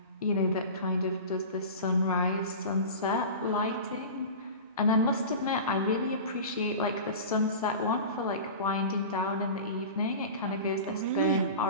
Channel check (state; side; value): inverted; both; correlation -0.32